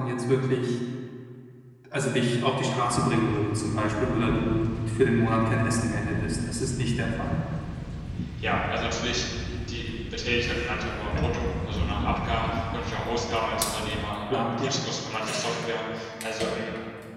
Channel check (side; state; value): both; identical; correlation 1.00